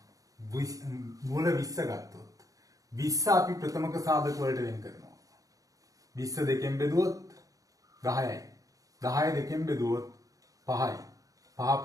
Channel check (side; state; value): left; late; 0.17 ms